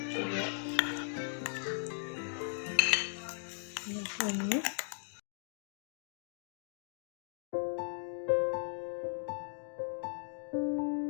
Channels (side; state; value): right; silent; digital silence